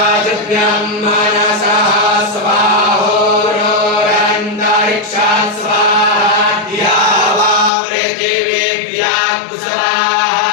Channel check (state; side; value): drops out; right; at 7.7 s